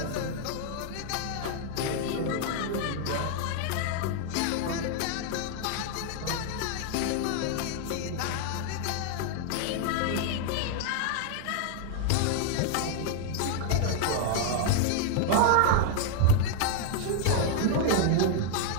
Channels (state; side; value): different; both; correlation 0.00